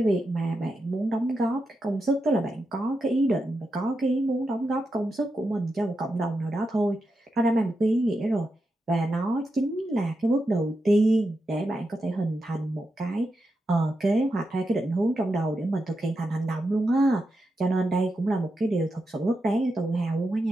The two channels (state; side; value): normal; both; correlation 0.87